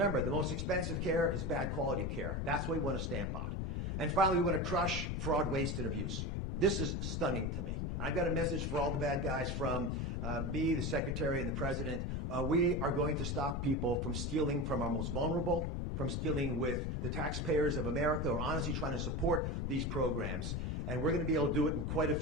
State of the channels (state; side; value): noise; left; rumble, 1 dB below the sound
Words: the most expensive care is bad quality care. That's what we want to stamp out. And finally, we want to crush fraud, waste, and abuse. This is stunning to me. I've got a message for all the bad guys from me, the Secretary, and the President. We are going to stop people from stealing from our most vulnerable, from stealing with the taxpayers of America who are honestly trying to support these programs. And we're going to be able to do it in quite a